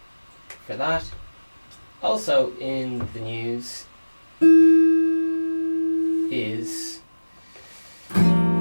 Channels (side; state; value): both; inverted; correlation -1.00